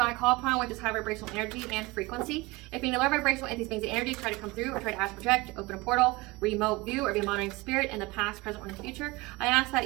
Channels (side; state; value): left; quieter; 22.7 dB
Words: I call upon, which is high vibrational energy and frequency. If any low vibrational entities, beings, and energy try to come through or try to ask, project, open a portal, remote view, or be a monitoring spirit in the past, present, or in the future, I ask that